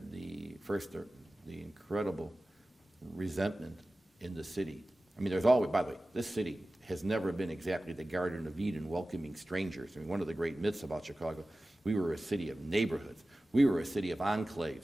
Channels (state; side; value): normal; both; correlation 0.96